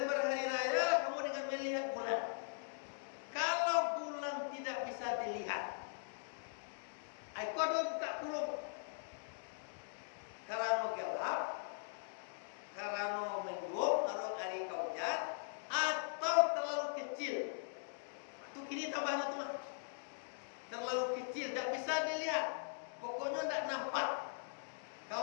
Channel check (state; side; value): silent; right; digital silence